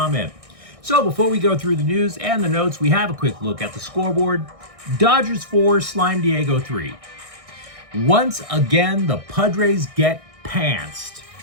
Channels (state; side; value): late; left; 1.6 ms